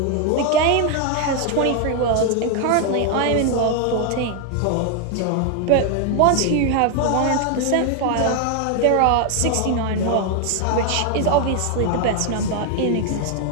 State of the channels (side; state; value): both; different; correlation 0.01